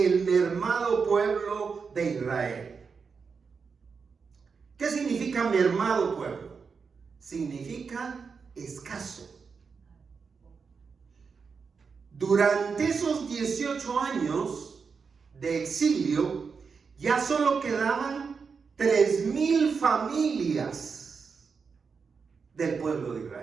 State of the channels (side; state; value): left; quieter; 5.4 dB